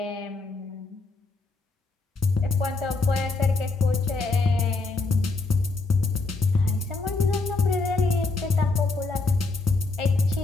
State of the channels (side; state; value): right; quieter; 3.7 dB